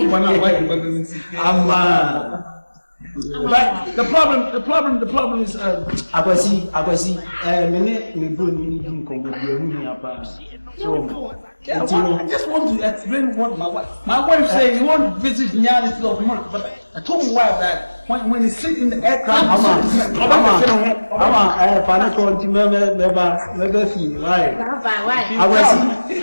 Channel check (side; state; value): both; inverted; correlation -1.00